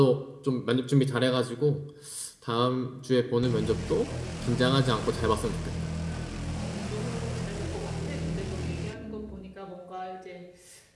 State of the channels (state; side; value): identical; both; correlation 1.00